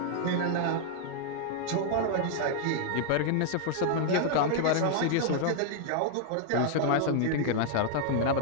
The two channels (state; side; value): different; both; correlation 0.00